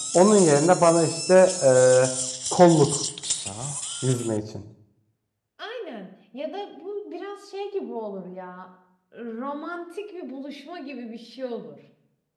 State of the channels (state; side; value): identical; both; correlation 1.00